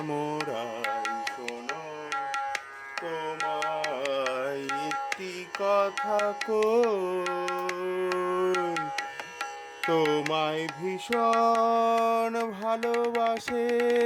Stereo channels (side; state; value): both; identical; correlation 1.00